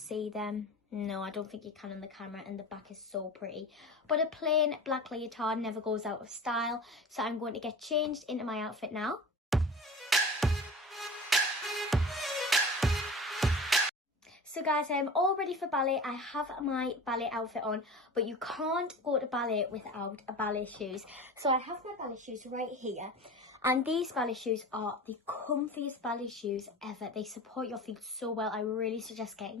them. No, I don't think you can on the camera, and the back is so pretty. But a plain black leotard never goes out of style, so I'm going to get changed into my outfit now. So guys, I am all ready for ballet. I have my ballet outfit on, but you can't go to ballet without ballet shoes. So I have my ballet shoes right here, and these ballet shoes are the comfiest ballet shoes ever. They support your feet so well. I really suggest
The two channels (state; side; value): normal; both; correlation 0.35